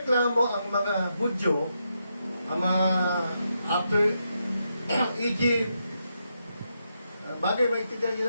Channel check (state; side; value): inverted; both; correlation -0.83